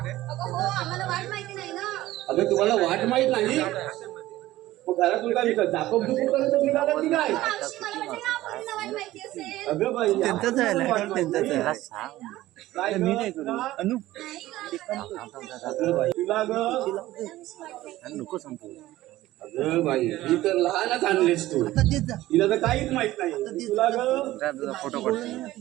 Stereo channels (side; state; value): left; quieter; 16.1 dB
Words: हो आम्हाला वाट माहिती नाही ना अगं तुम्हाला वाट माहित नाही मग घरातून काय विकत जाकोब दुखून करत निघाला की काय मावशी मला वाटलं ना पोरींना वाट माहिती असेल अगं बाई त्यांचाच आहे त्यांचाच काय मी नाही करू अनु तुला नको संपू अगं बाई ही तर लहानच आणलीस तू तिला तर काहीच माहित नाही तुला ग फोटो